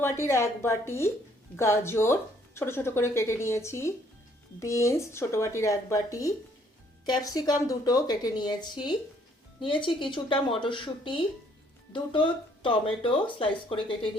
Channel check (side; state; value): both; normal; correlation 0.64